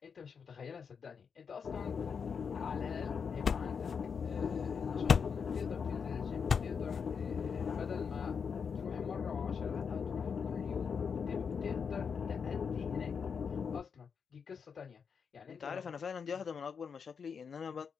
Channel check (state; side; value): quieter; right; 6.3 dB